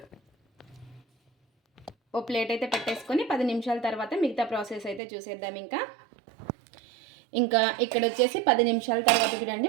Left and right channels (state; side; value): drops out; left; at 5.0 s